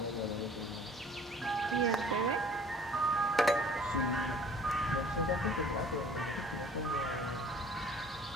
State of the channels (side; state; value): both; normal; correlation 0.51